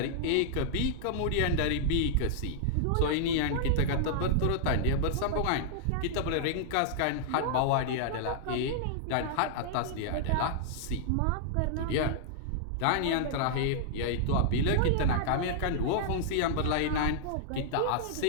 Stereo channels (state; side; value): different; both; correlation -0.01